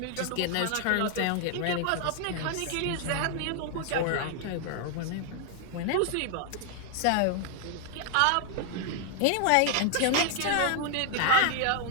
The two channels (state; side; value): different; both; correlation 0.00